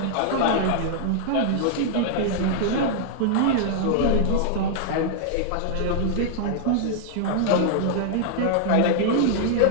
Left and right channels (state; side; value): different; both; correlation -0.01